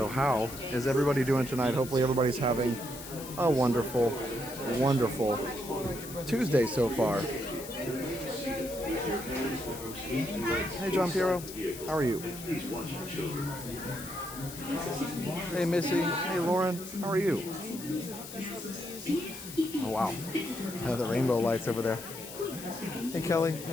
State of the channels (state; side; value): noise; left; hiss, 13 dB below the sound